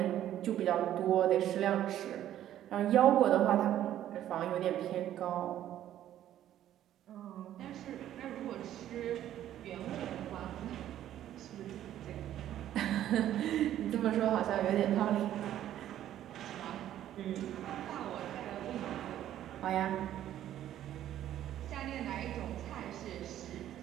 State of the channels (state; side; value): quieter; left; 11.9 dB